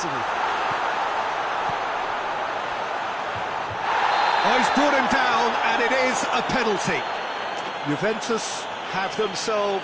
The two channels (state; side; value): identical; both; correlation 1.00